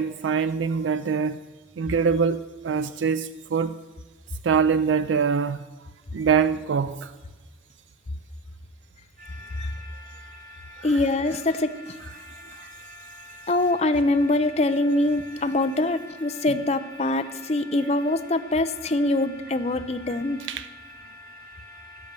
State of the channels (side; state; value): both; normal; correlation 0.31